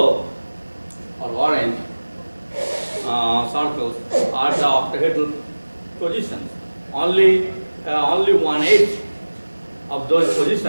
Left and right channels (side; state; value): both; inverted; correlation -1.00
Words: or orange circles are the octahedral positions. Only 1/8 of those